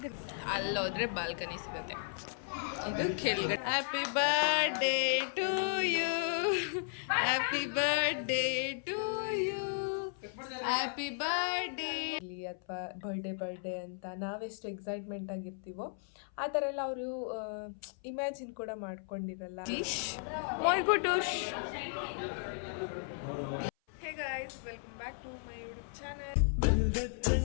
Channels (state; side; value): silent; right; 54 dB below the other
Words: ಅಲ್ಲೋದ್ರೆ ಬಾಲ್ಕನಿ ಸಿಗುತ್ತೆ. ಇದು ಕೆಳಗಡೆ happy birthday to you, happy birthday to you, happy birthday ಅಥವಾ ಬರ್ಡೇ ಅಂತ ನಾವೆಷ್ಟು ಎಕ್ಸೈಟ್ಮೆಂಟ್ ಆಗಿರ್ತೀವೋ ಆ ಥರ ಎಲ್ಲ ಅವರು ಇಮ್ಯಾಜಿನ್ ಕೂಡ ಮಾಡ್ಕೊಂಡಿರಲ್ಲ. My Gutush. Hey guys, welcome back to my YouTube channel.